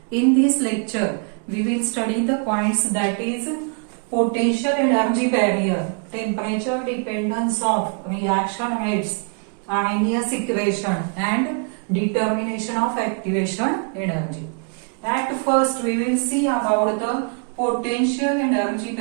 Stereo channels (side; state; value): left; quieter; 39.7 dB